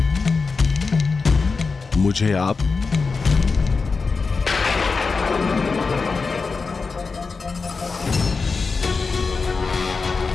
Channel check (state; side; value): quieter; right; 4.5 dB